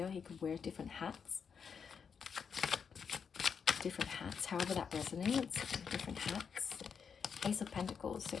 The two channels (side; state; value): right; quieter; 6.5 dB